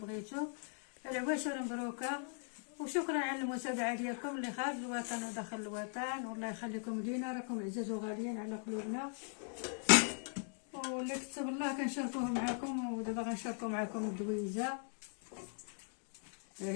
العواشر مبروكه وشكرا على المتابعه ديالكم اللي خارج الوطن وداخل الوطن، والله يخليكم لينا، راكم عزاز وغاليين على قلوبنا. واللي كتب الله كنشاركوه معكم، ودابا غنشاركو معكم الدويزه. ها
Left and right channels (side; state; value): right; silent; 51 dB below the other